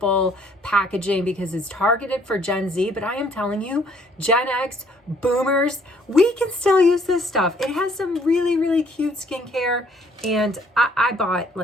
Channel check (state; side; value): normal; both; correlation 0.62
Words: packaging because it's targeted for Gen Z. But I am telling you, Gen X, boomers, we can still use this stuff. It has some really, really cute skincare. And I bought,